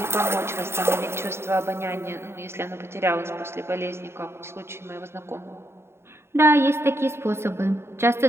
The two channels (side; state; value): left; late; 0.12 ms